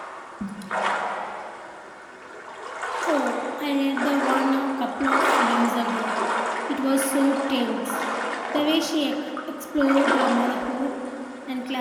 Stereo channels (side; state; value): both; identical; correlation 1.00